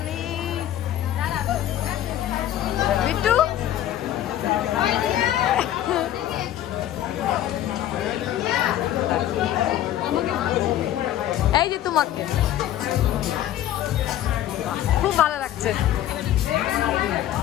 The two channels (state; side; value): quieter; right; 12.4 dB